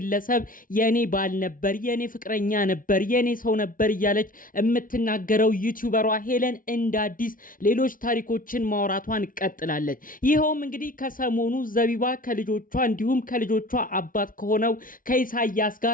የኔ ባል ነበር፣ የኔ ፍቅረኛ ነበር፣ የኔ ሰው ነበር እያለች የምትናገረው ዩቲዩበሯ ሄለን እንደ አዲስ ሌሎች ታሪኮችን ማውራቷን ቀጥላለች። ይኸውም እንግዲህ ከሰሞኑ ዘቢባ ከልጆቿ እንዲሁም ከልጆቿ አባት ከሆነው ከኢሳያስ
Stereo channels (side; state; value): right; late; 0.39 ms